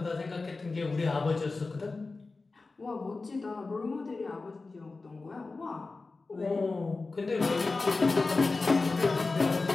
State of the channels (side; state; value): right; quieter; 3.7 dB